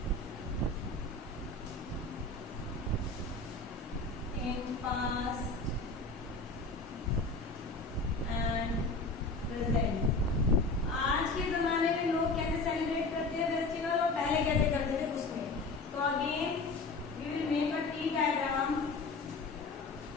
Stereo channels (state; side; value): quieter; right; 3.4 dB